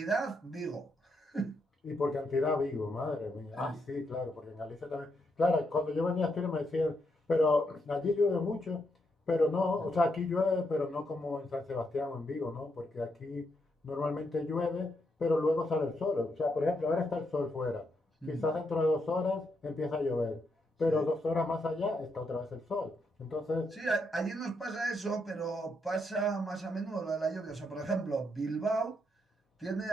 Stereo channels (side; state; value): both; normal; correlation 0.79